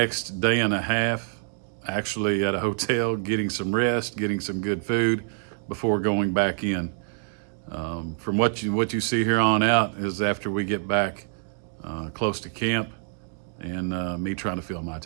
day and a half actually at a hotel, getting some rest, getting some good food before going back in. From what you see here on out is after we get back close to camp and me trying to fill my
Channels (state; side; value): silent; left; digital silence